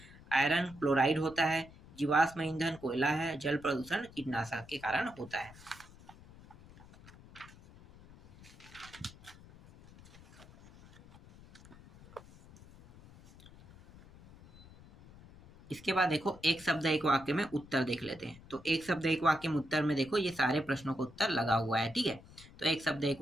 आयरन क्लोराइड होता है। जीवाश्म ईंधन कोयला है। जल प्रदूषण कीटनाशक के कारण होता है। इसके बाद देखो, एक शब्द एक वाक्य में उत्तर देख लेते हैं। तो एक शब्द एक वाक्य में उत्तर में देखो, ये सारे प्रश्नों का उत्तर लगा हुआ है। ठीक है, तो एक शब्द एक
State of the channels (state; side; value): noise; left; rumble, 21 dB below the sound